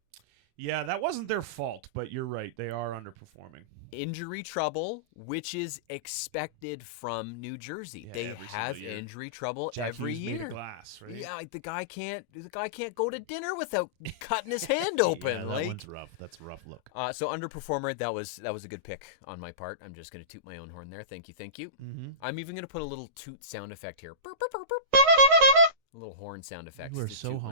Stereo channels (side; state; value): left; late; 13 ms